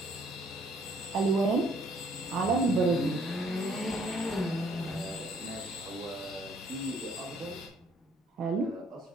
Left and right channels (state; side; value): normal; both; correlation 0.62